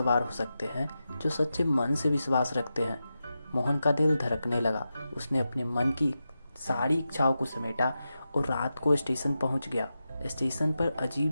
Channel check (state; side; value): inverted; both; correlation -0.90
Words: हो सकते हैं जो सच्चे मन से विश्वास रखते हैं। मोहन का दिल धड़कने लगा। उसने अपने मन की सारी इच्छाओं को समेटा और रात को स्टेशन पहुंच गया। स्टेशन पर